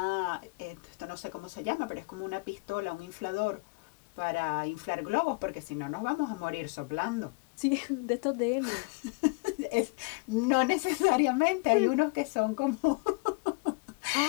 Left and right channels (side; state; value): right; quieter; 28.5 dB